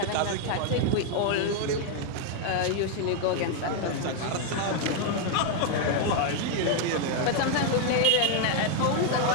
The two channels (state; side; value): different; both; correlation 0.00